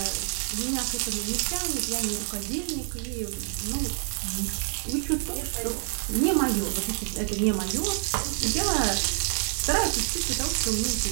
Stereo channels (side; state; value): left; silent; 60 dB below the other